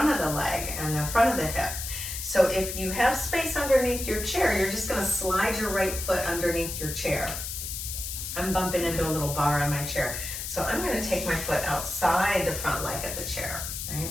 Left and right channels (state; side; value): noise; left; hiss, 6 dB below the sound